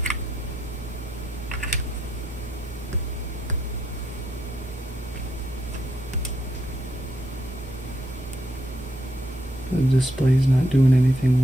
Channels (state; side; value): normal; both; correlation 0.78